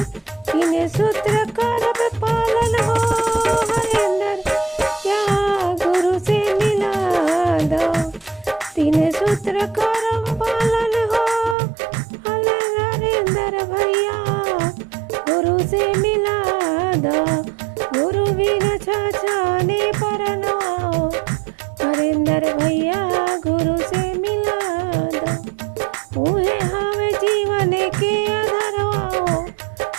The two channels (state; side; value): drops out; left; at 11.6 s